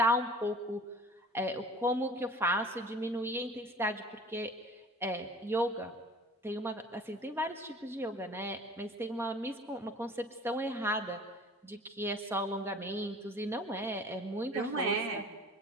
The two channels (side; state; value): both; normal; correlation 0.45